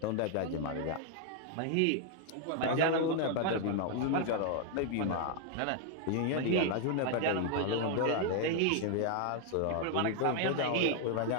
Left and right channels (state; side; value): different; both; correlation 0.00